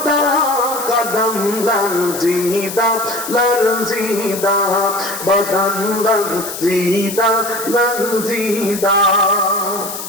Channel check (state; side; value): noise; left; hiss, 8 dB below the sound